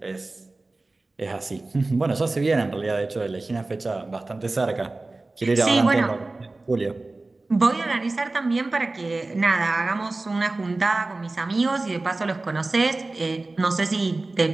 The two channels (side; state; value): left; quieter; 3.2 dB